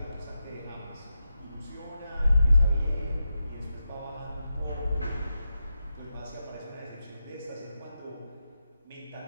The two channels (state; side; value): inverted; both; correlation -0.88